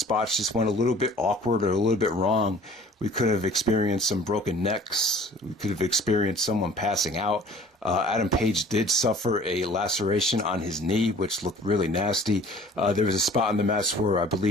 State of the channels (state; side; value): normal; both; correlation 0.49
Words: just went a little bit awkward or a little bit wrong, we could have experienced some broken necks. We could have experienced someone passing out. Adam Page did suffer a laceration on his knee, which looked really nasty. There was a spot in the match where I